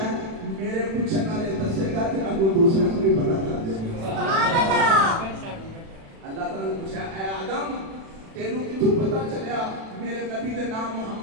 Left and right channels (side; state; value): left; late; 36 ms